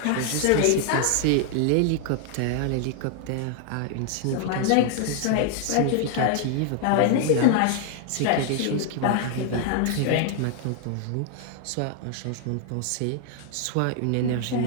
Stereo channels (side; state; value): both; different; correlation 0.00